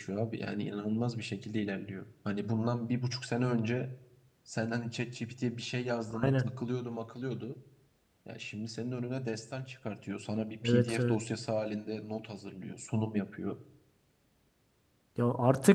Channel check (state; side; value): identical; both; correlation 1.00